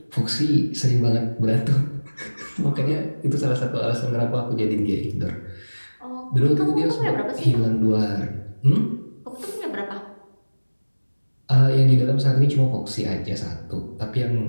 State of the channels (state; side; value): inverted; both; correlation -1.00